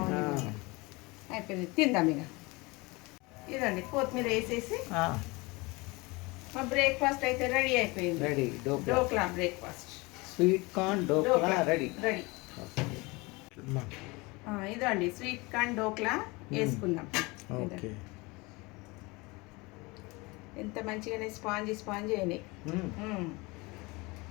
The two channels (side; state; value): right; quieter; 24.8 dB